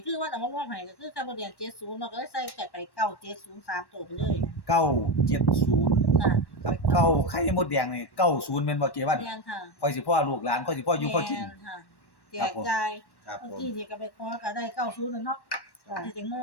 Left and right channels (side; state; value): right; late; 1.1 ms